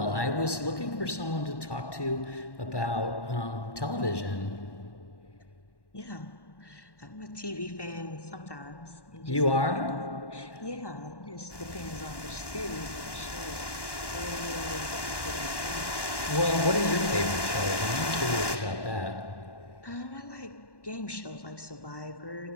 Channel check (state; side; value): late; right; 1.1 ms